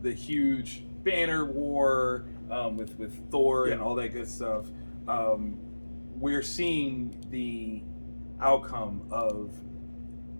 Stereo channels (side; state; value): both; inverted; correlation -1.00